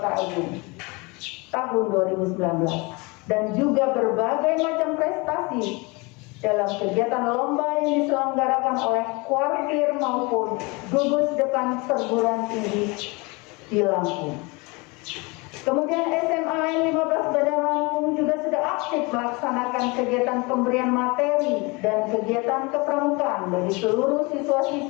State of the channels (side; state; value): right; quieter; 26.9 dB